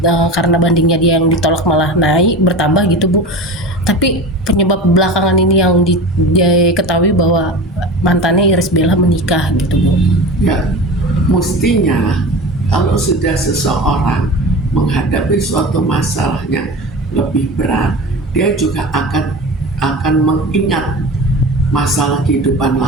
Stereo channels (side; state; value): both; normal; correlation 0.31